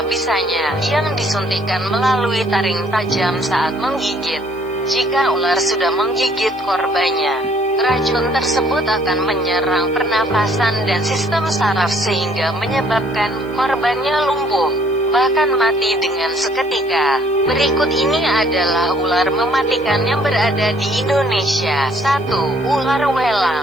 bisanya yang disuntikkan melalui taring tajam saat menggigit. Jika ular sudah menggigit korbannya, racun tersebut akan menyerang pernafasan dan sistem saraf sehingga menyebabkan korbannya lumpuh, bahkan mati dengan seketika. Berikut ini adalah ular mematikan yang berada di Indonesia. 1. Ular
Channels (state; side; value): noise; left; hiss, 29 dB below the sound